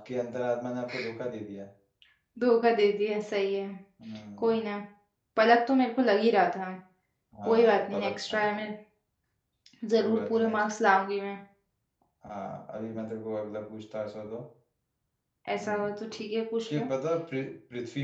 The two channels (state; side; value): identical; both; correlation 1.00